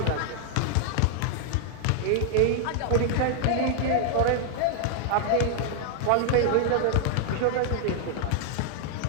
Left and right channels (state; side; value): different; both; correlation 0.00